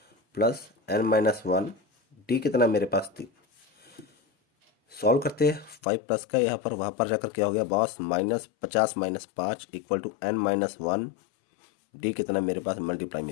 प्लस N-1 डी कितना मेरे पास 3। सॉल्व करते हैं 5 प्लस का यहाँ पर, वहाँ पर जाकर क्या हो गया boss, -50 - 5 equal to N-1 D कितना मेरे पास मल्टीप्लाई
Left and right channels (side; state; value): right; drops out; at 5.8 s